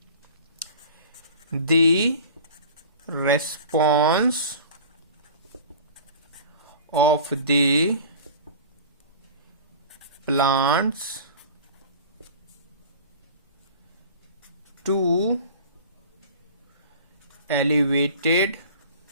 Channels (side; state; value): both; inverted; correlation -0.40